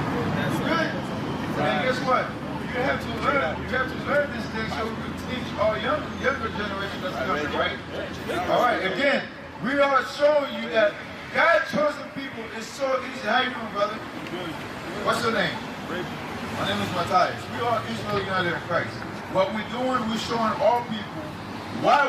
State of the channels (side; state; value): both; identical; correlation 1.00